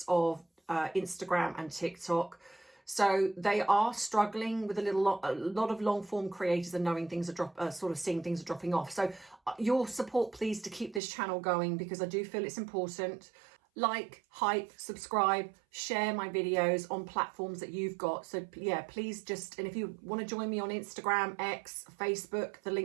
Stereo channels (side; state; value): left; drops out; at 11.0 s